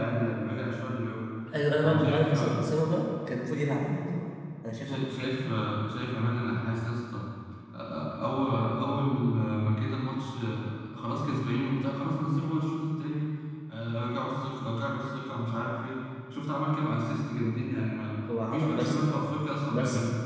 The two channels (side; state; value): both; identical; correlation 1.00